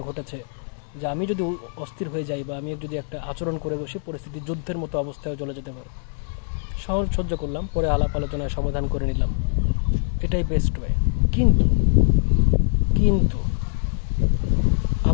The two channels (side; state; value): right; silent; digital silence